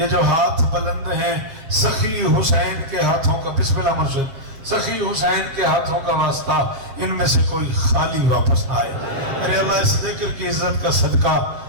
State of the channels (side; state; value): left; late; 7.3 ms